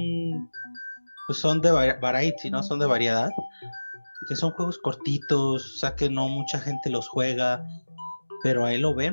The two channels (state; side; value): inverted; both; correlation -1.00